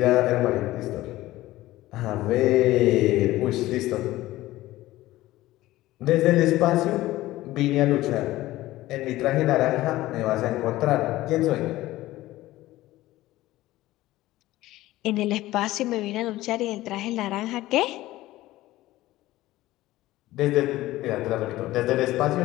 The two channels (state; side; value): quieter; right; 16.7 dB